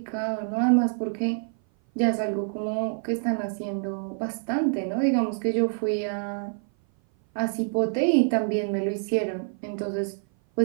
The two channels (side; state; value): left; silent; 57 dB below the other